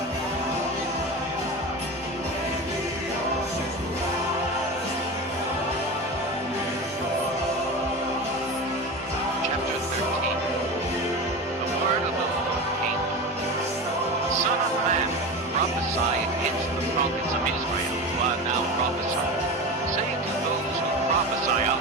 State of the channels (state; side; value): normal; both; correlation 0.26